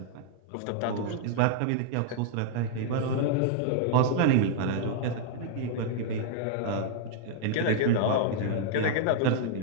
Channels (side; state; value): both; different; correlation 0.00